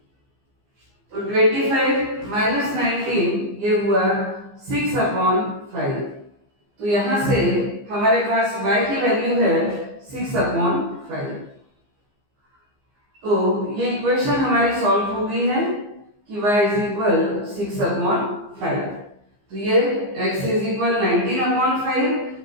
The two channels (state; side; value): late; left; 15 ms